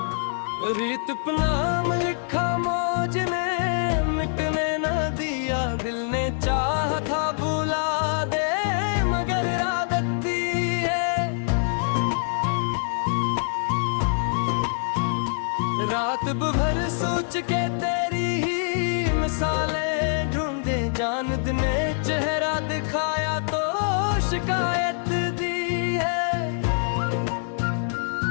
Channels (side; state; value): right; silent; digital silence